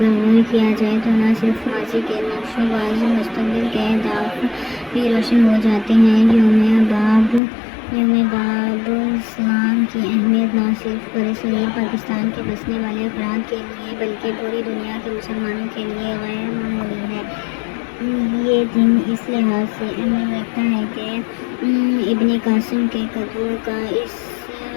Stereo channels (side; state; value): right; drops out; at 7.4 s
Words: غور کیا جائے تو نہ صرف ماضی کے نقش و باز مستقبل کے اہداف بھی روشن ہو جاتے ہیں۔ یوم باب اسلام کی اہمیت نہ صرف برصغیر پاکستان کے بسنے والے افراد کے لیے بلکہ پوری دنیا کے مسلمانوں کے لیے غیر معمولی ہے۔ یہ دن اس لحاظ سے اہمیت رکھتا ہے کہ ابن قاسم کے قدموں کا اس